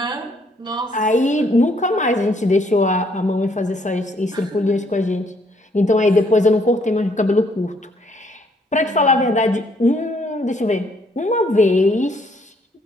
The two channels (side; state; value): both; normal; correlation 0.68